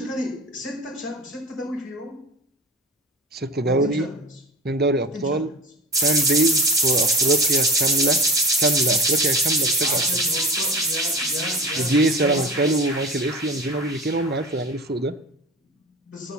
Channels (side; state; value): both; normal; correlation 0.32